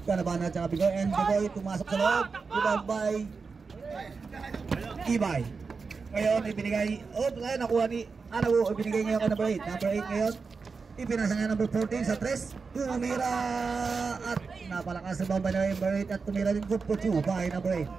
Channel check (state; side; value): quieter; left; 4.8 dB